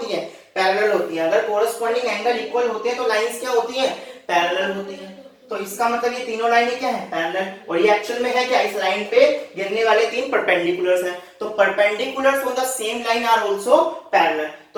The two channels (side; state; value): both; identical; correlation 1.00